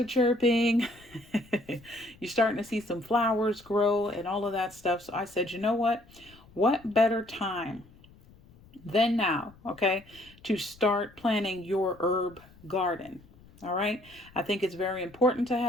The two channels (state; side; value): noise; left; rumble, 25 dB below the sound